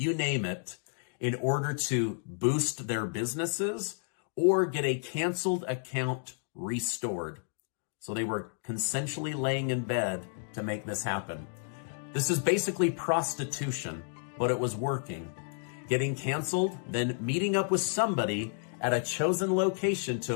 name it, in order to boost their businesses or get a canceled account restored. So they were consensually laying in bed to make this happen. This is basically prostitution, but it was working. Getting canceled, then meeting up with somebody at a chosen location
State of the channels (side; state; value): right; silent; digital silence